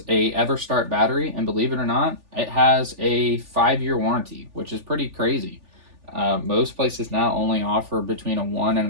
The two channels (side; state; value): left; late; 3.4 ms